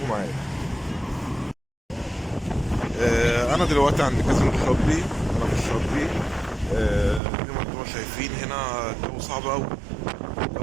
معايا. انا دلوقتي عند كازينو الشاطبي، انا في الشاطبي. زي ما انتم شايفين هنا الجو صعب قوي،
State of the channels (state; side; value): drops out; left; at 7.2 s